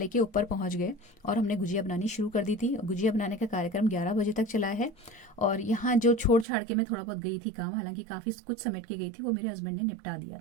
ऊपर पहुंच गए और हमने गुजिया बनानी शुरू कर दी थी। गुजिया बनाने का कार्यक्रम 11 बजे तक चला है। और यहाँ जो छोड़ छाड़ के मैं थोड़ा बहुत गई थी काम, हालांकि काफ़ी कुछ समेट के गई थी, वो मेरे हस्बैंड ने निपटा दिया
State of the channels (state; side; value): drops out; left; at 6.5 s